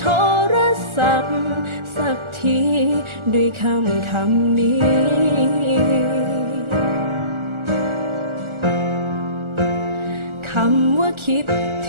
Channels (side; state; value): left; late; 1.4 ms